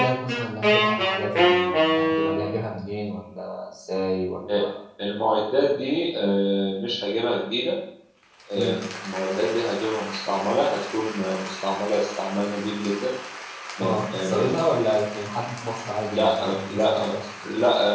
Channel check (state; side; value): identical; both; correlation 1.00